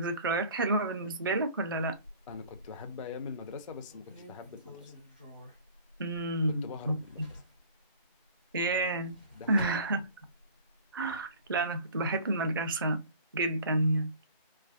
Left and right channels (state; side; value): inverted; both; correlation -0.48